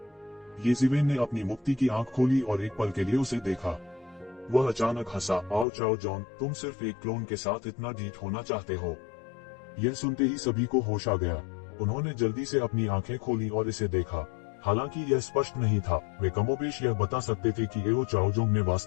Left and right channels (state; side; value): drops out; right; at 5.7 s